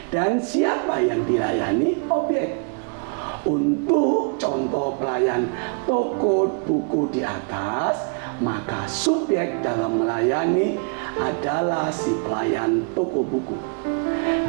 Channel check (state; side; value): quieter; left; 38.9 dB